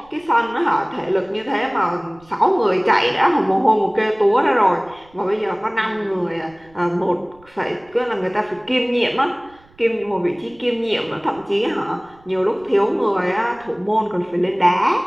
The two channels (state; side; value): noise; right; rumble, 29 dB below the sound